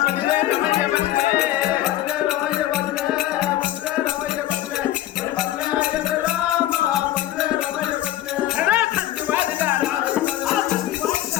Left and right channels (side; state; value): right; quieter; 13.9 dB